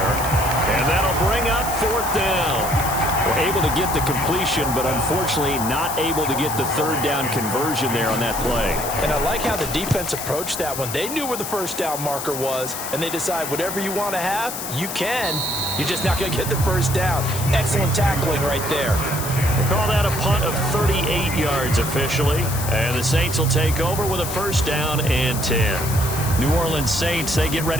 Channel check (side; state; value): left; noise; hiss, 7 dB below the sound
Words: And that'll bring up 4th down. We're able to get the completion, but unfortunately not able to get the 3rd down conversion there on that play. And I like how the defense approached that one. They knew where the 1st down marker was, and they decide whatever you want to have, you can. You're just not going to get the 1st down. Excellent tackling right there. They call that a punt of 38 yards officially. And the Saints will take over with a 1st down and 10. New Orleans Saints, they get